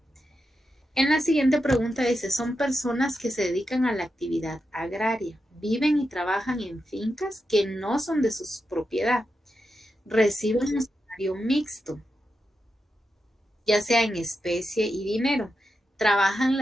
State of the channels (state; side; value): normal; both; correlation 0.87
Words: En la siguiente pregunta dice, son personas que se dedican a la actividad agraria, viven y trabajan en fincas que no son de su propiedad, reciben un salario mixto, ya sea en especie y dinero, trabajan